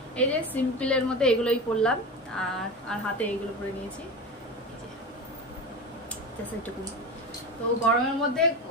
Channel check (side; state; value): both; normal; correlation 0.25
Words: এই যে সিম্পলের মধ্যে এগুলোই পরলাম, আর হাতে এইগুলো পরে নিয়েছি। তো গরমের মধ্যে